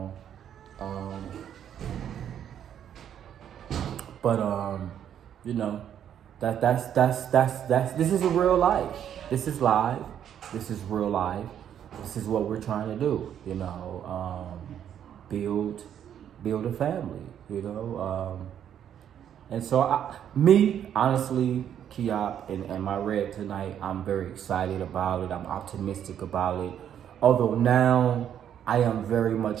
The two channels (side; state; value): left; quieter; 9.6 dB